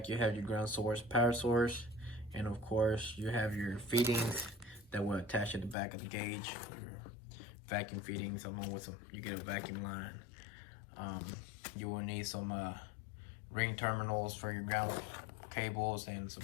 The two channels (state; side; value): drops out; right; at 5.8 s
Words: you have your ground source, power source, and of course, you have your fittings that will attach at the back of the gauge. Your vacuum fittings, along with you get a vacuum line. You will need some ring terminals for your ground cables and some